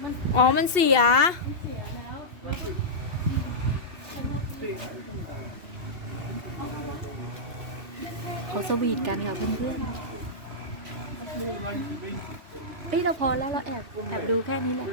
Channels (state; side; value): late; left; 2.7 ms